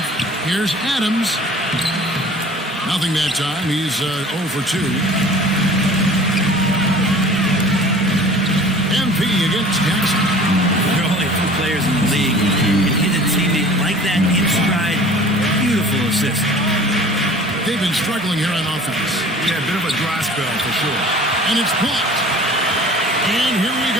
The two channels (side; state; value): both; normal; correlation 0.45